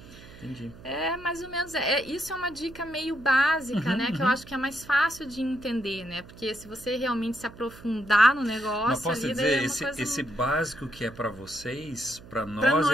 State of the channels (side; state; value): right; noise; hum, 19 dB below the sound